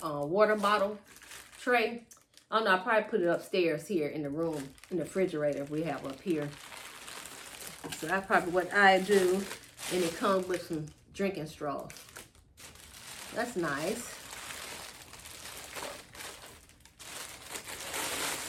water bottle tray. I don't know, I'll probably put it upstairs here in the room, in the refrigerator we have up here. So that's probably what I do. And it comes with some drinking straws. That's nice.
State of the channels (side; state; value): both; identical; correlation 1.00